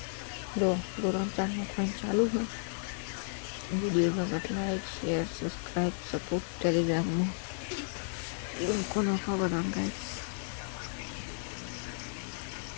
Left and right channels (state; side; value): silent; right; digital silence